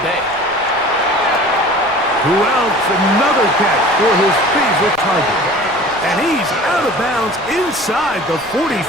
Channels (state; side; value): noise; left; rumble, 26 dB below the sound